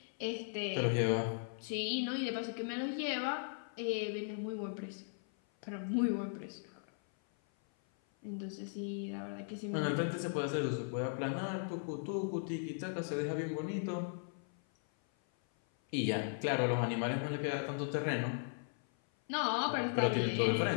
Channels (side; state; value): right; silent; 53 dB below the other